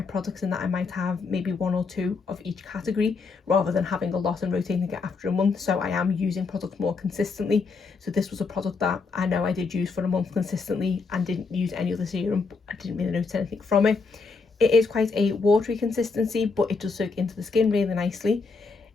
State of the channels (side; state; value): right; quieter; 4.5 dB